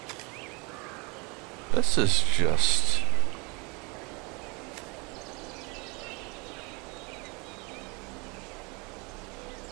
This is just...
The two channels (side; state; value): left; quieter; 29.3 dB